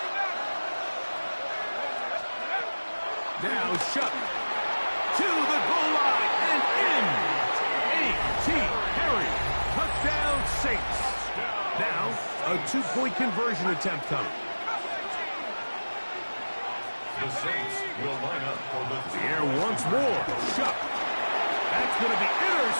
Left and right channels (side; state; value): both; inverted; correlation -1.00